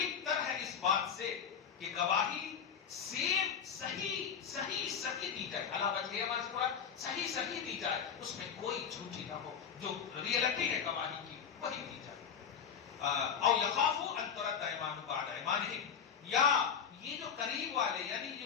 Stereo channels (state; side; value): quieter; right; 7.3 dB